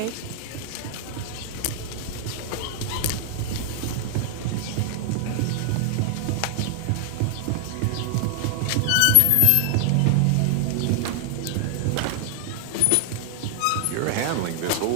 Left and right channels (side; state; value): both; different; correlation 0.00